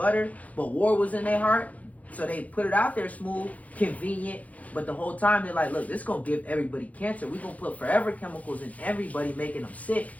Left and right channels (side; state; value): right; late; 0.071 ms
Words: but war was in their heart. So they put it out there smooth, convenient, but the whole time they're like, look, this is going to give everybody cancer. We're going to put forever chemicals in everybody, making them sick,